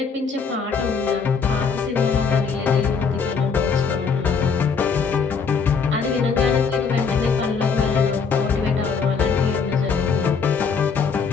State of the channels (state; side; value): quieter; right; 5.6 dB